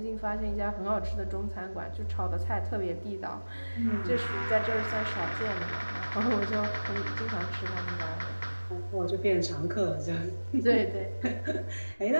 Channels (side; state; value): both; inverted; correlation -1.00